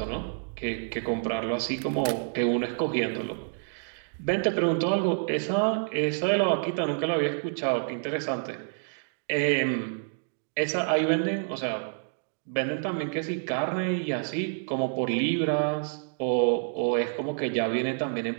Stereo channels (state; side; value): silent; left; digital silence